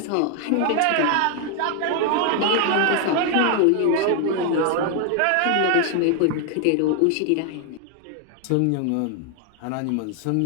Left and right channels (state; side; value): different; both; correlation 0.00